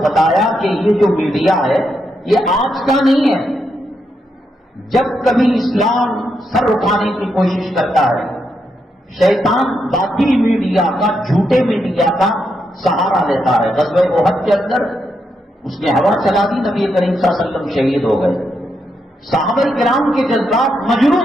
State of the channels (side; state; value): both; normal; correlation 0.82